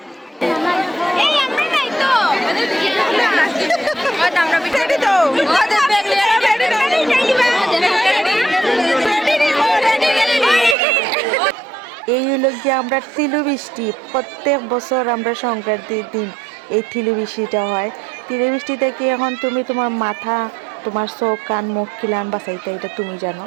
এই হলো গিয়ে আমরা তিলু বৃষ্টি, প্রত্যেক বছর আমরা সংক্রান্তির দিন এই তিলু বৃষ্টিটা হয়। তিলু বৃষ্টি থেকে এখন তুমি তোমার মাথা, তোমার চোখ, কান, মুখ খিলান বাঁচাইতে, এটা তুমি জানো।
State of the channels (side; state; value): left; drops out; at 10.8 s